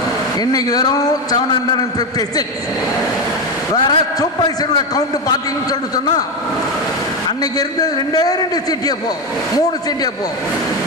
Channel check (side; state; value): both; normal; correlation 0.12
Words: இன்னைக்கு வெறும் 756. வேற சூப்பர்வைசரோட கவுண்ட் பார்த்தீங்கன்னு சொல்லிட்டு சொன்னால் அன்னைக்கு இருந்தது 2 CTFO, 3 CTFO,